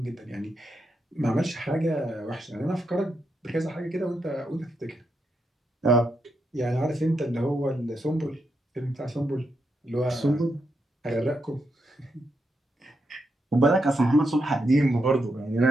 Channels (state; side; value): normal; both; correlation 0.82